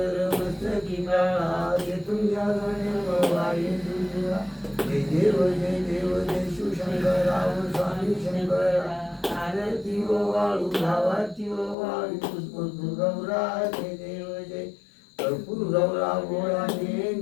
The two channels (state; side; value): drops out; right; at 11.8 s